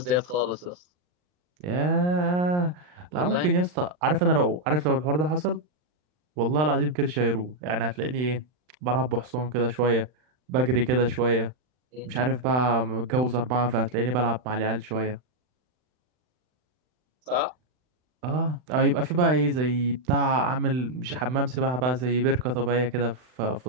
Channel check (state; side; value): late; left; 39 ms